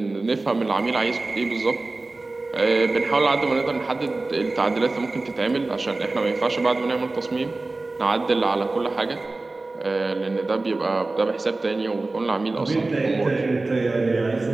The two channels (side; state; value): left; quieter; 3.2 dB